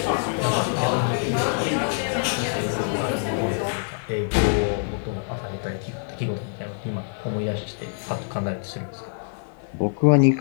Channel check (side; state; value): right; silent; digital silence